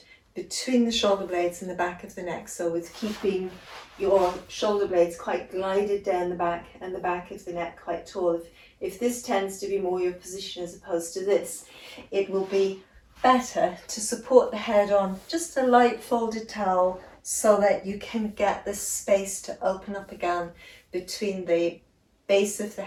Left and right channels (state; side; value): identical; both; correlation 1.00